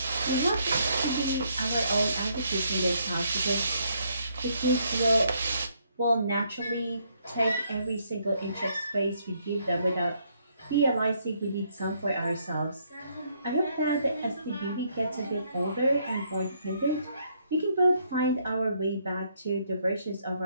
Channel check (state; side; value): inverted; both; correlation -0.71